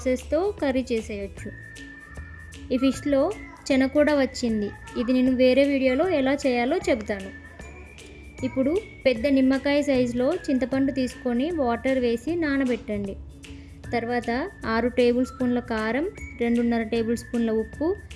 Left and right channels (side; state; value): both; identical; correlation 1.00